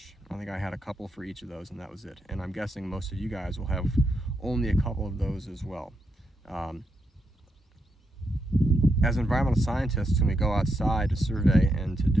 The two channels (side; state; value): both; normal; correlation 0.82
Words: I think I had a couple for each of those, and that was it. And I'm guessing most of you guys will have only a couple of those as well. As environmental scientists, when we go outside to survey and to